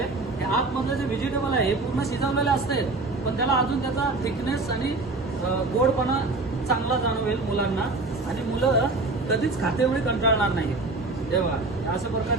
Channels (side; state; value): left; quieter; 3.3 dB